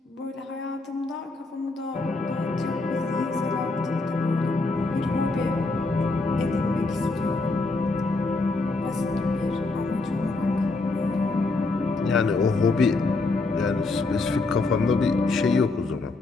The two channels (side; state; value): right; quieter; 3.4 dB